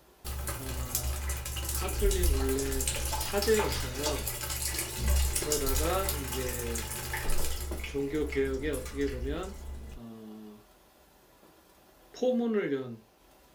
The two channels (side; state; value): both; identical; correlation 1.00